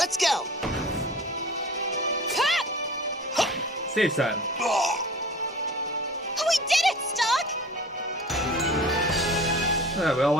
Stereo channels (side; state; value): both; normal; correlation 0.41